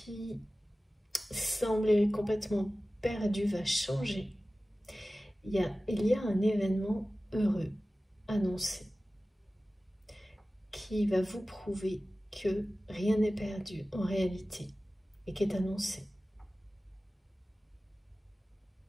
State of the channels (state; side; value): normal; both; correlation 0.96